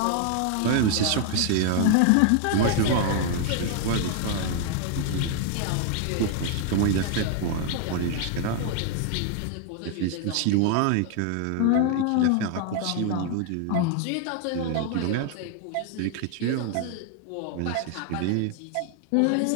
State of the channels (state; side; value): different; both; correlation 0.00